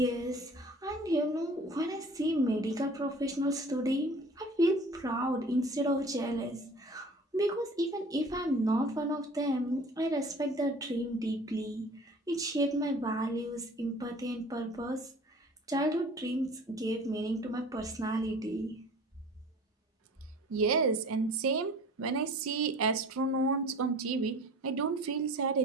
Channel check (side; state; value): both; normal; correlation 0.45